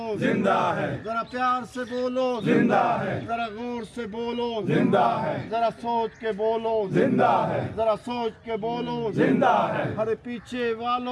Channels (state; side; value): identical; both; correlation 1.00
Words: जिंदा है, जरा प्यार से बोलो जिंदा है, जरा गौर से बोलो जिंदा है, जरा सोच के बोलो जिंदा है, जरा सोच के बोलो जिंदा है, अरे पीछे